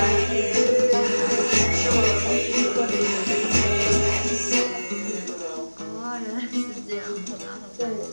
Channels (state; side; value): inverted; both; correlation -1.00